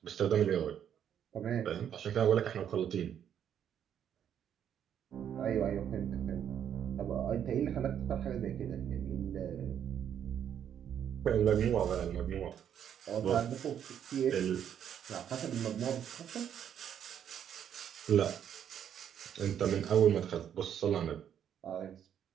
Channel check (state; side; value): quieter; left; 9.2 dB